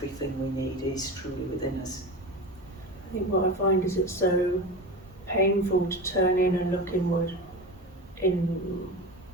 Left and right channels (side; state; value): both; normal; correlation 0.27